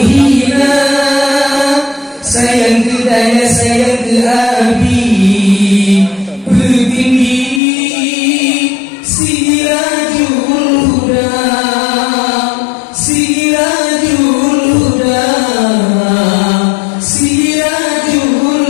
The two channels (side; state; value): right; drops out; at 7.6 s